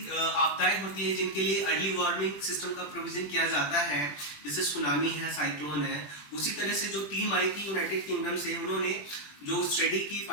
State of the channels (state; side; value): late; right; 21 ms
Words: आपदाएं होती हैं जिनके लिए early warning system का provision किया जाता है, जैसे सुनामी है, साइक्लोन है। उसी तरह से जो टीम आई थी यूनाइटेड किंगडम से, उन्होंने जो स्टडी की